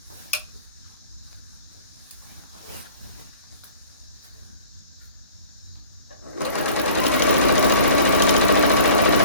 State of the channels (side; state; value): both; inverted; correlation -0.47